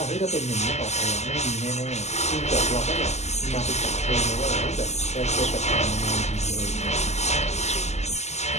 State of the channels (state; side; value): late; right; 0.33 ms